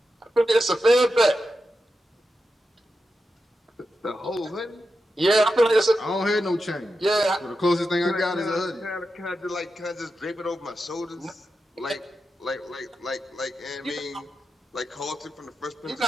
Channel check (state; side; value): normal; both; correlation 0.89